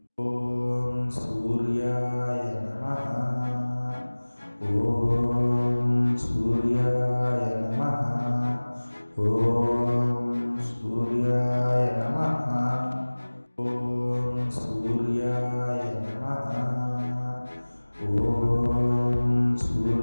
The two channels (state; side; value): inverted; both; correlation -1.00